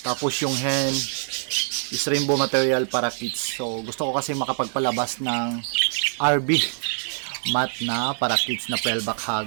tapos yung hen is rainbow material parakeets. So gusto ko kasi makapagpalabas ng RB mat na parakeets na 12-back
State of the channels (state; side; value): silent; left; digital silence